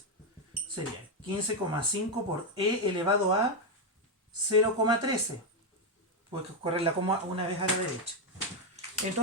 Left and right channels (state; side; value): normal; both; correlation 0.05